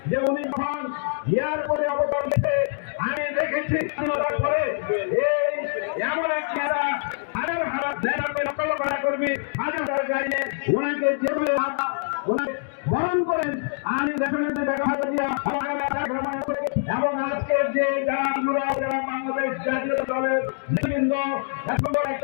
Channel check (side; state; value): right; silent; digital silence